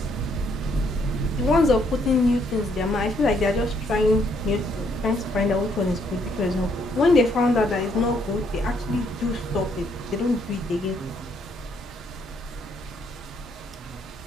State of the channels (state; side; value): normal; both; correlation 0.70